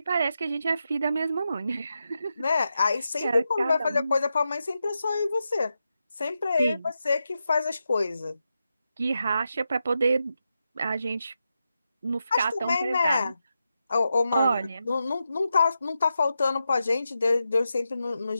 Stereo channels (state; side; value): inverted; both; correlation -0.88